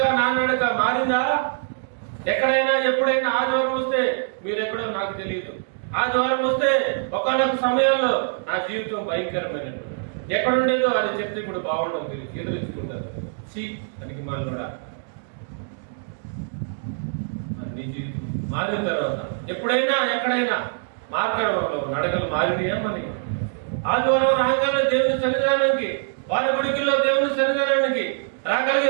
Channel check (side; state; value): left; silent; digital silence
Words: నా నడక మారిందా? ఎక్కడైనా ఎప్పుడైనా ఆదివారం వస్తే, మీరెక్కడో నాకు తెలియదు, ఆదివారం వస్తే ఒకనొక సమయంలో నా జీవితం భయంకరమైనట్టు ఎక్కడుండేదో అది చెప్తే ఇప్పుడు బాగుండదు, మీరు ఎదురించుకుంటారు. దానికి మళ్ళీ నీ జీవితం మారిన తర్వాత ఎప్పుడైనా ఎక్కడైనా మార్గంలో నడకలు మారినాయా? మనకి ఆదివారం రాగానే దేవుని సన్నిధానానికి, వారి గుడికిల్లో దేవుని సన్నిధానానికి రాగలిగే